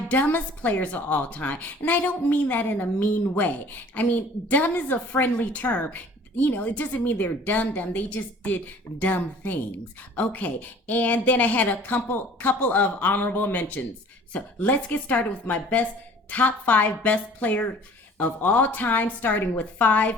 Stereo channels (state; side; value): normal; both; correlation 0.50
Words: dumbest players of all time. And I don't mean that in a mean way. I mean, dumb is a friendly term. It doesn't mean they're dumb. They just did dumb things. Okay, and then I had a couple of honorable mentions. So let's get started with my top 5 best player of all time, starting with